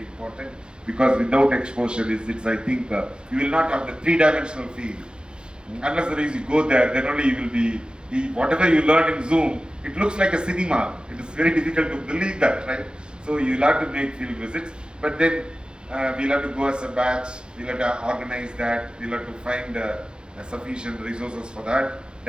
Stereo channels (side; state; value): left; late; 0.050 ms